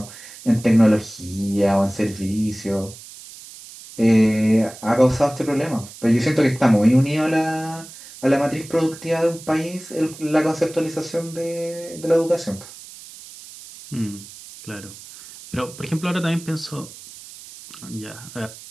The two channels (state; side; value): noise; right; hiss, 17 dB below the sound